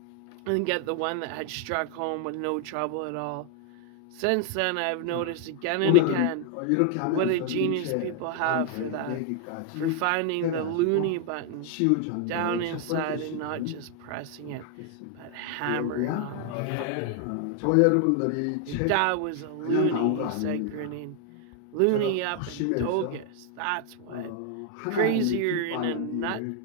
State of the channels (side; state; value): both; different; correlation 0.00